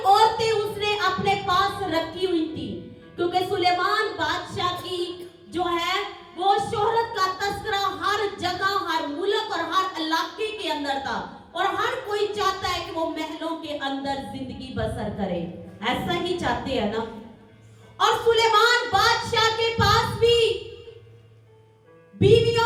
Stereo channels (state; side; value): identical; both; correlation 1.00